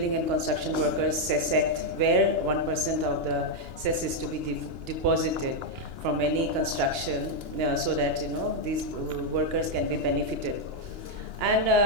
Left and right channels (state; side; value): late; left; 2.9 ms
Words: and Construction Workers Cess Act, where 1% of the cess is to be deposited from any construction, so that these workers can be benefited. And